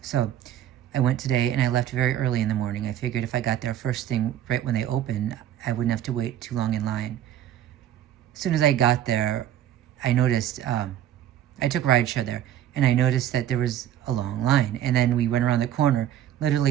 So I went today and I left very early in the morning. I figured if I got there first thing right when they open, I wouldn't have to wait too long in line. As soon as I got there, I noticed, I took rideshare there, and I noticed that there was a long line. And then we went around the corner.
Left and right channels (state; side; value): quieter; left; 11.4 dB